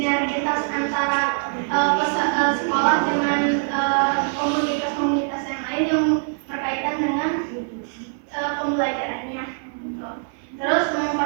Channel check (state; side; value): silent; left; 63 dB below the other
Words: antara sekolah dengan komunitas-komunitas yang lain yang berkaitan dengan pembelajarannya. Terus